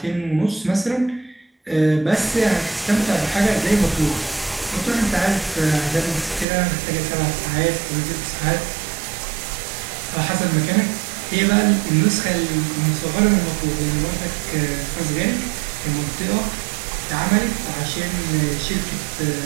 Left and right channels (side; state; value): left; drops out; at 6.5 s